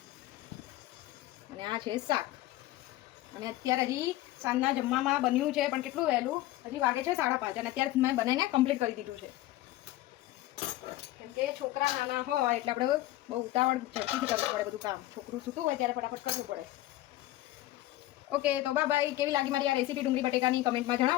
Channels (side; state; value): right; quieter; 15.9 dB